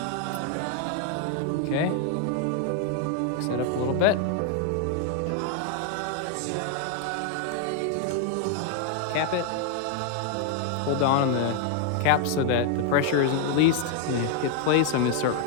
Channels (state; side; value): different; both; correlation 0.00